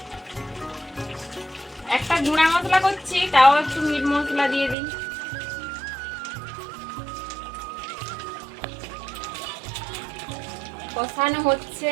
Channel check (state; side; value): drops out; left; at 4.8 s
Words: একটা গুঁড়া মশলা করছি, তাও একটু মিট মশলা দিয়ে দিই। কষানো হচ্ছে,